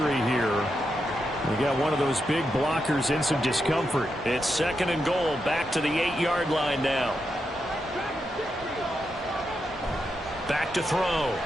here. We got one of those big blockers in some discomfort. It's 2nd and goal, back to the 8-yard line now. Back to throw.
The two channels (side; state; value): both; normal; correlation 0.85